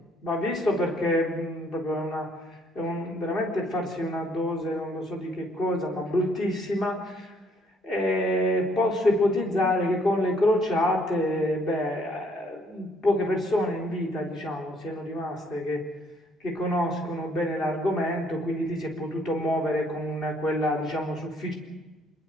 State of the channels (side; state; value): both; normal; correlation 0.66